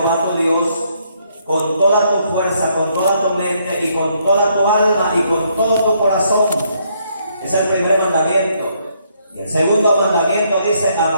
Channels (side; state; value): both; inverted; correlation -0.71